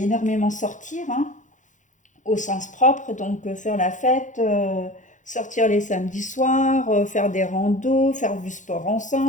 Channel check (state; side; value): late; right; 0.36 ms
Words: énormément sortir, hein, au sens propre, donc faire la fête, sortir les samedis soirs, faire des randos, faire du sport